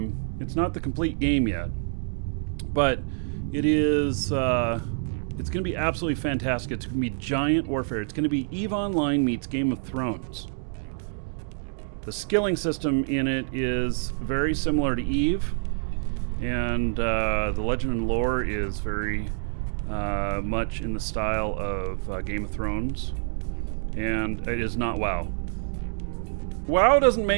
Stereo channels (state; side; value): silent; left; digital silence